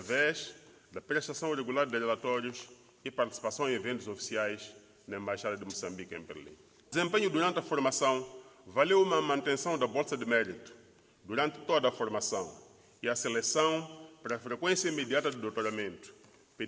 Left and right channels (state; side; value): identical; both; correlation 1.00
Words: da prestação regular de relatórios e participação em eventos oficiais na Embaixada de Moçambique em Berlim. O desempenho durante a formação valeu uma manutenção da bolsa de mérito durante toda a formação e a seleção para a frequência imediata do doutoramento,